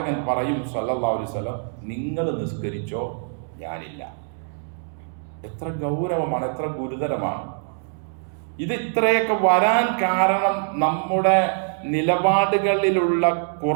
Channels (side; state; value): left; silent; digital silence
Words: പറയും സല്ലല്ലാഹു അലൈഹി വസല്ലം, നിങ്ങൾ നിസ്കരിച്ചോ, ഞാനില്ല. എത്ര ഗൗരവമാണ്, എത്ര ഗുരുതരമാണ് ഇത്. ഇത്രയൊക്കെ വരാൻ കാരണം നമ്മുടെ നിലപാടുകളിലുള്ള